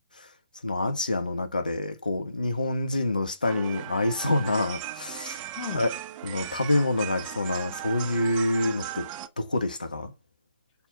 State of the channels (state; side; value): inverted; both; correlation -0.80